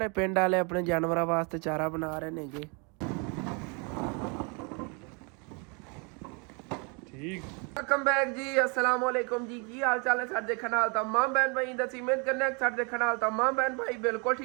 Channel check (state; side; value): quieter; left; 33.4 dB